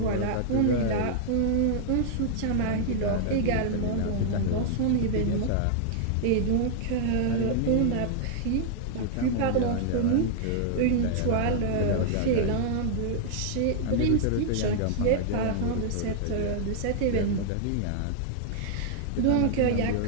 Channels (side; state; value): both; different; correlation -0.01